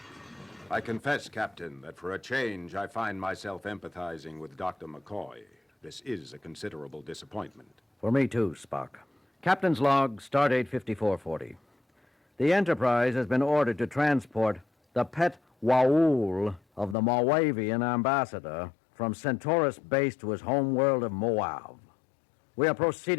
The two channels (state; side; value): drops out; right; at 16.9 s